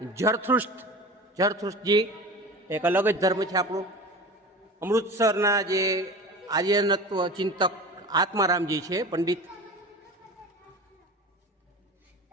જરથુષ્ટજી, એક અલગ જ ધર્મ છે આપણો। અમૃતસરના જે આર્યનત્વ ચિંતક આત્મારામજી છે પંડિત।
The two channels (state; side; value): normal; both; correlation 0.34